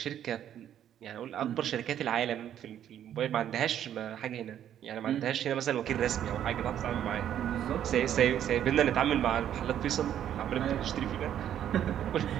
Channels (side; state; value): left; quieter; 10.4 dB